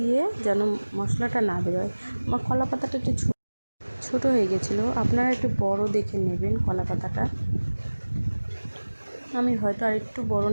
যেন মশলাটা না বেরোয়। আমার কলা পাতাটা একটু ছোটো হয়ে গেছিলো, আপনারা একটু বড় দেখে নেবেন কলা পাতাটা। আমি হয়তো আর একটু বড়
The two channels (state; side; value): inverted; both; correlation -1.00